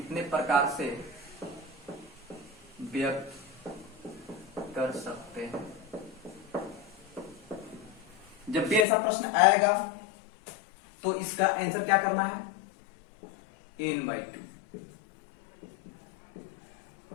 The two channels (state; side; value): drops out; right; at 8.8 s